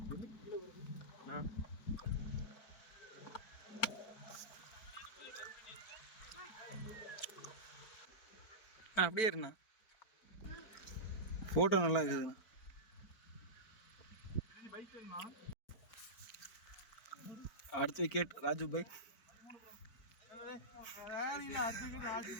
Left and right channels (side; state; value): right; late; 4.4 ms